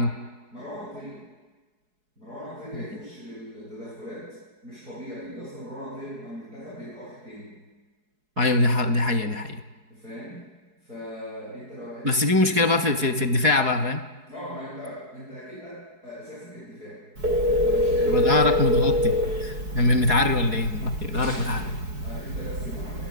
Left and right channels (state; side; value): late; left; 4.7 ms